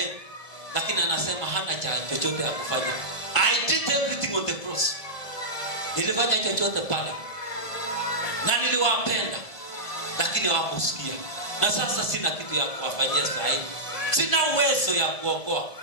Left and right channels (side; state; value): right; late; 1.5 ms